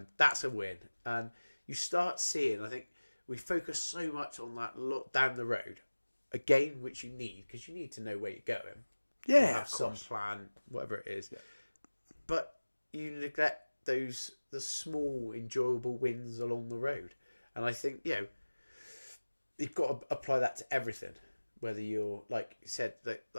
that's a win. And you start seeing, I think we focus so much on that look down the road, again, which you need, because you need to know where you're going. Yeah, or have some plan, whatever it is. But you neglect the small, enjoyable wins along the road. And I think, you've got to apply that to everything. Whether you're, like you said,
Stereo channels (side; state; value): both; inverted; correlation -1.00